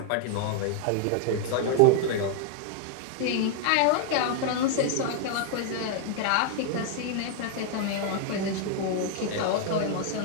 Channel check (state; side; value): different; both; correlation 0.00